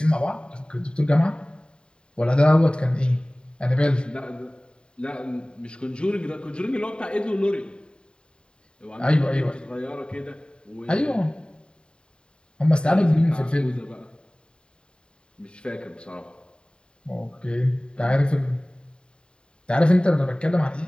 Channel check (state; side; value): late; right; 0.051 ms